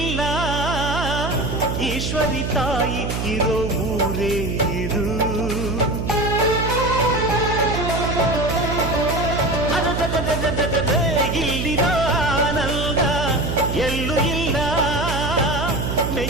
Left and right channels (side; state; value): right; noise; hum, 2 dB below the sound